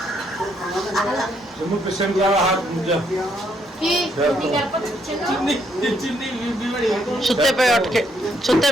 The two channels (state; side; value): normal; both; correlation 0.72